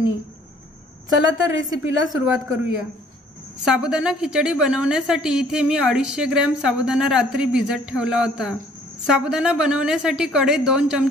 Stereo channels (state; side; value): normal; both; correlation 0.58